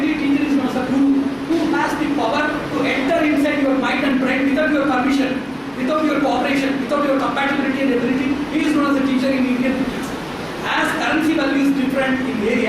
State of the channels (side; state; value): both; identical; correlation 1.00